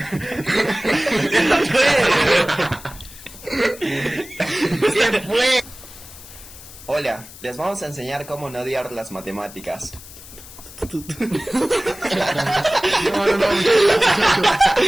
¿Qué fue? Hola, les vamos a enseñar cómo no odiar las matemáticas. No.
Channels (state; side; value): noise; left; hiss, 17 dB below the sound